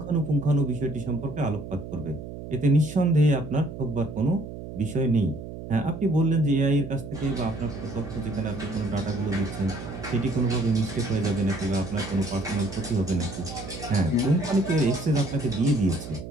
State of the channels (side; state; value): right; noise; hum, 10 dB below the sound